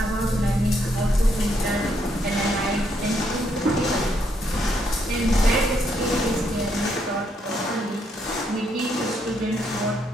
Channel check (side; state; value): both; normal; correlation 0.75